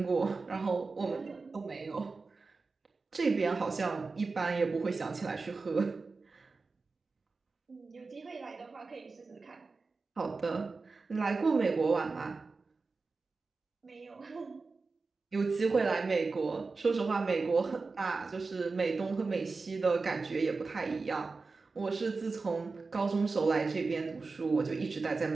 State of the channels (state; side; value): quieter; left; 4.1 dB